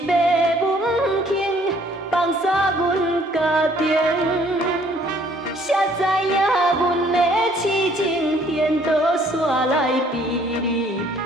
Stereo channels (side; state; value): both; normal; correlation 0.61